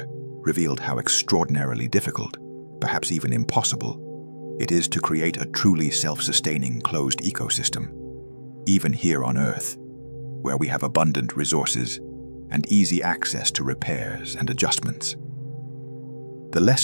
revealed how extraordinarily difficult, perhaps even impossible, it is to create a truly self-sustaining closed ecosystem, even here on Earth, where we have abundant resources and easy access to repairs and adjustments. The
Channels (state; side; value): inverted; both; correlation -1.00